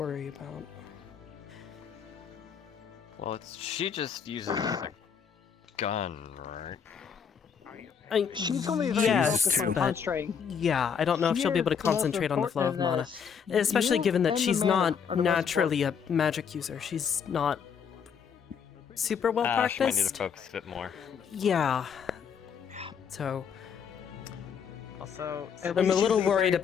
about. Well, she just uses a gun, right? She's only yes, on but concentrating. yeah, I don't know if she'll be able to concentrate on the flow of mana, especially given that she's not naturally a magic user. She's not super well She might need practiced. to focus a bit more. Yeah. So Also, I'm a little worried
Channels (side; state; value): right; quieter; 7.0 dB